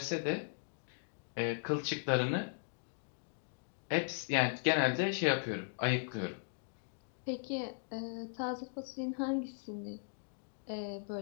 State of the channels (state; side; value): silent; right; digital silence